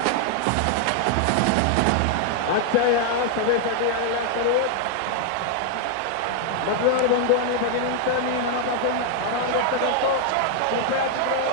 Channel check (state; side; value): different; both; correlation 0.00